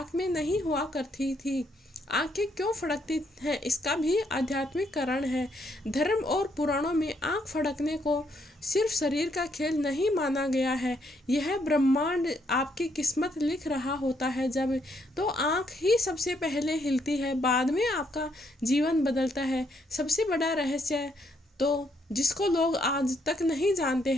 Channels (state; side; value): normal; both; correlation 0.73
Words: में नहीं हुआ करती थी। आंखें क्यों फड़कती हैं, इसका भी आध्यात्मिक कारण है। धर्म और पुराणों में आंख फड़कने को सिर्फ शरीर का खेल नहीं माना गया है। यह ब्रह्मांड आपकी किस्मत लिख रहा होता है। जब तो आंख ही सबसे पहले हिलती है, बाद में आपका जीवन बदलता है। सबसे बड़ा रहस्य तो जिसको लोग आज तक नहीं जानते